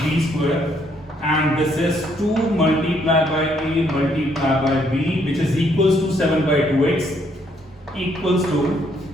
square, and this is 2 multiplied by a multiplied by b, which is equals to 7 by 2x equals to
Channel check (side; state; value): both; normal; correlation 0.70